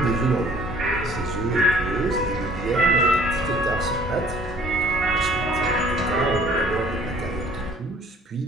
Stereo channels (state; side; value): normal; both; correlation 0.54